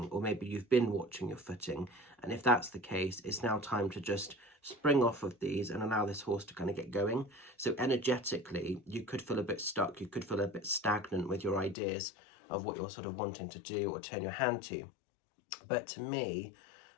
or maybe you've been watching your footing. And if that's the case, it's now time to just spring off of these and allow this horse to kind of get going. So energetically, you could feel a bit stuck. You could feel a bit stagnant with your ideas of what you're sort of wanting to do or turn your hand to. But to me,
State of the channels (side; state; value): right; drops out; at 11.8 s